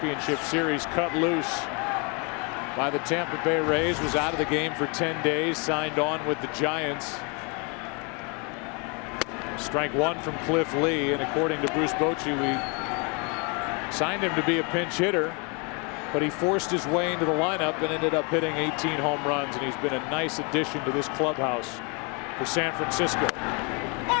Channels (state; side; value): quieter; right; 33.0 dB